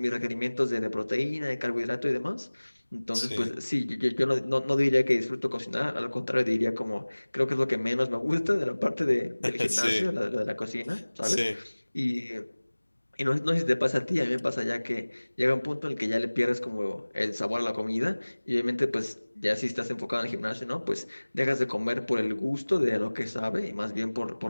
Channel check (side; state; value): both; inverted; correlation -1.00